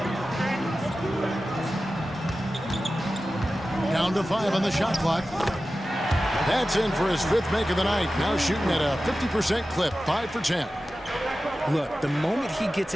Down to 5 on the shot clock. That's in for his 5th make of the night. Now shooting at a 50% clip, 5 for 10. Look, the moment he gets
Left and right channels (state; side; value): normal; both; correlation 0.94